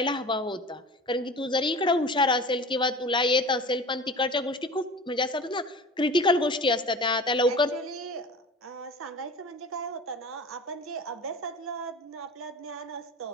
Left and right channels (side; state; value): both; normal; correlation 0.37